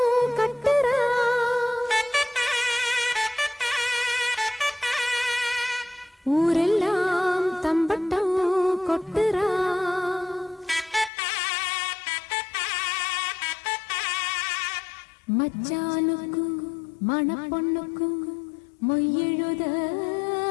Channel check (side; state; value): right; drops out; at 11.1 s